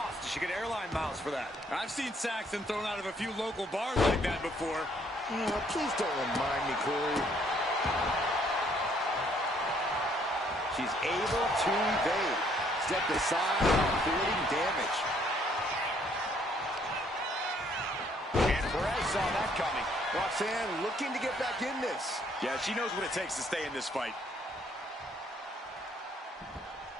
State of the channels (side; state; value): both; normal; correlation 0.65